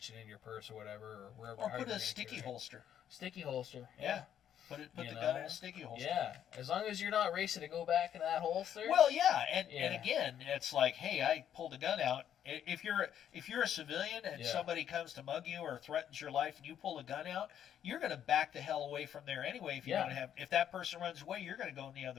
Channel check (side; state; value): right; quieter; 9.8 dB